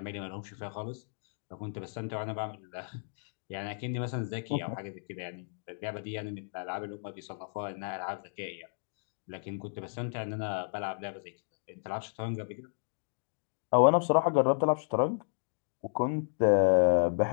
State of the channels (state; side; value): silent; right; digital silence